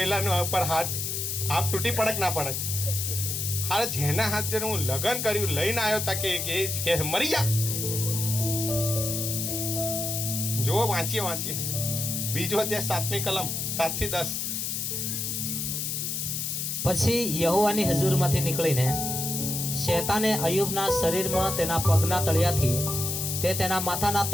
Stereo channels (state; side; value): noise; left; hiss, 2 dB below the sound